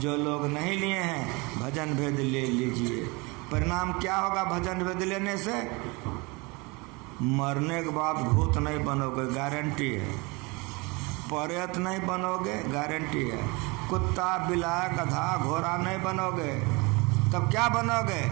लोग नहीं लिए हैं भजन भेद ले लीजिए। परिणाम क्या होगा भजन भेद लेने से? मरने के बाद भूत नहीं बनोगे, गारंटी है। प्रेत नहीं बनोगे, गारंटी है। कुत्ता बिलाय गधा घोड़ा नहीं बनोगे। तब क्या बनोगे?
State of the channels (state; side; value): quieter; left; 26.7 dB